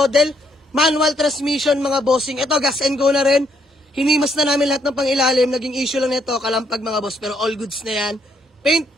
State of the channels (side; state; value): both; normal; correlation 0.72